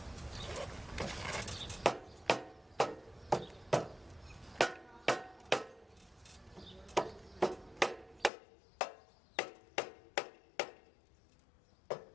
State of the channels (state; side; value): drops out; right; at 8.3 s